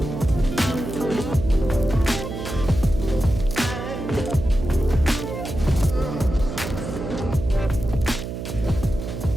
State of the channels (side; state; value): right; noise; hum, 7 dB below the sound